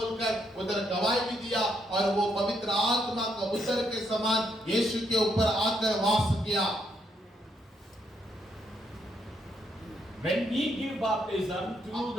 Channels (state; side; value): normal; both; correlation 0.75